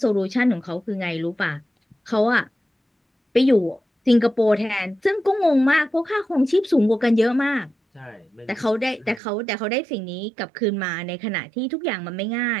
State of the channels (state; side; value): drops out; left; at 9.2 s